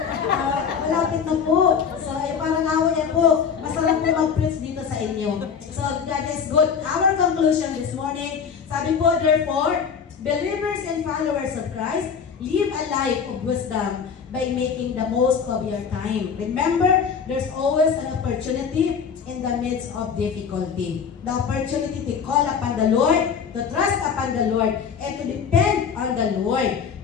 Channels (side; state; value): right; quieter; 6.6 dB